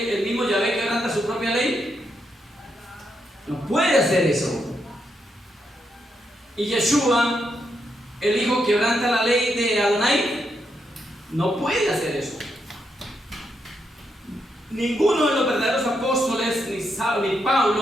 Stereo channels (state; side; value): normal; both; correlation 0.81